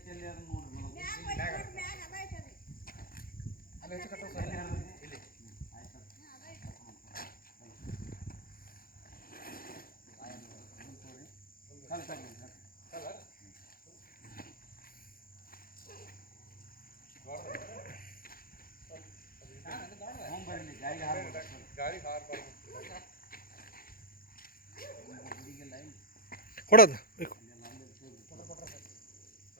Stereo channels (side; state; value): right; late; 0.42 ms